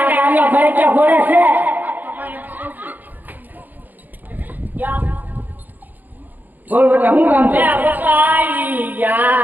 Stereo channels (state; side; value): late; left; 0.085 ms